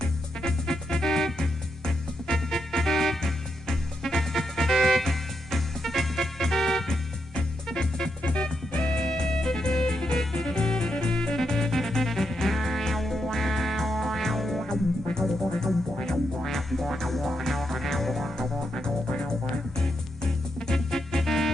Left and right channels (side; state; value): both; normal; correlation 0.82